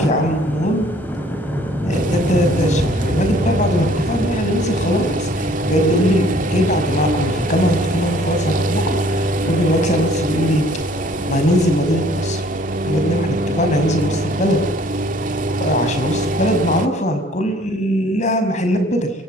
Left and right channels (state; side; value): normal; both; correlation 0.57